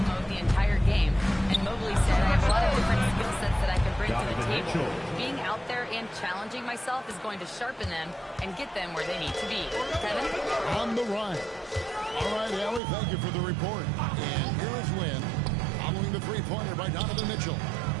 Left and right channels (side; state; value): left; drops out; at 12.8 s